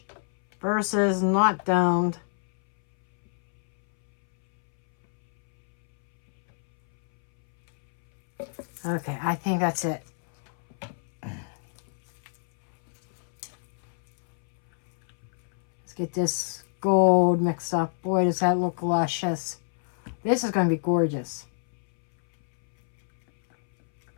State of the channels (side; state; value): right; silent; 61 dB below the other